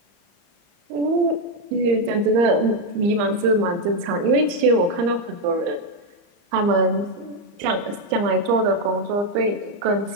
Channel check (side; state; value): left; late; 34 ms